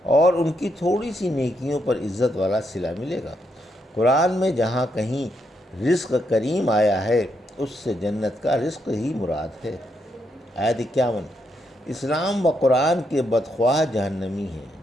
اور ان کی تھوڑی سی نیکیوں پر عزت والا صلہ ملے گا۔ قرآن میں جہاں کہیں رزق کریم آیا ہے اس سے جنت کا رزق ہی مراد ہے۔ آیت 51۔ اسلام و قرآن کے بدخواہ جہنمی ہیں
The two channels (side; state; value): both; normal; correlation 0.79